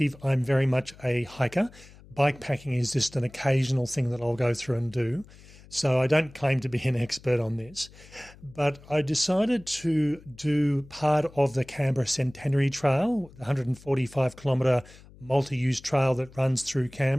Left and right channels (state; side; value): noise; left; hum, 22 dB below the sound